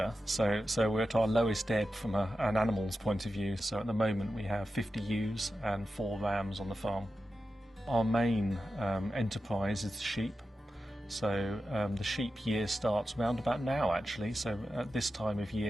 so we're at our lowest ebb from an animal's point of view. So at the moment we have 50 ewes and 4 rams on the farm. Our main enterprise is sheep. So the sheep year starts round about now actually. So at this time of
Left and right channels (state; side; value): normal; both; correlation 0.91